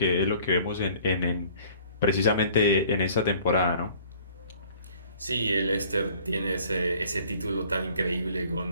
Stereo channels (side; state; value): both; inverted; correlation -0.54